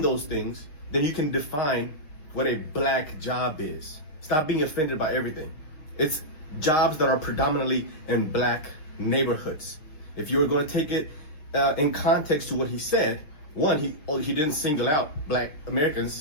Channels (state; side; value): late; right; 6.5 ms